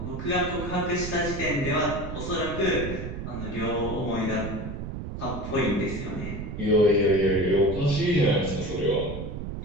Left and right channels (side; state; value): right; noise; rumble, 7 dB below the sound